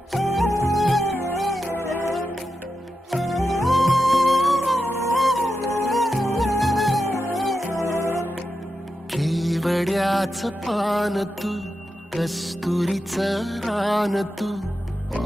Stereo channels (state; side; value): normal; both; correlation 0.89